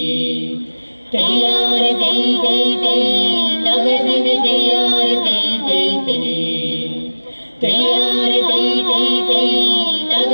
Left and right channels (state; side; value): inverted; both; correlation -1.00